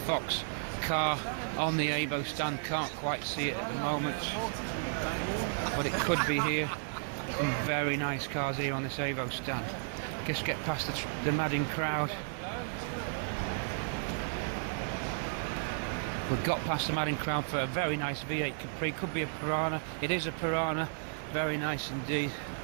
car on the Evo stand. Can't quite see it at the moment, but it could be here. Some very nice cars here on this Evo stand. Just get past the madding crowd. We've got past the madding crowd for a very nice V8 Capri. Could be a Piranha. It is a Piranha. Very nice indeed.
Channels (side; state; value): left; silent; digital silence